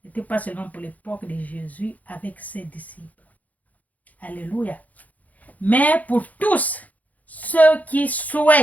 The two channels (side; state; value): right; late; 0.077 ms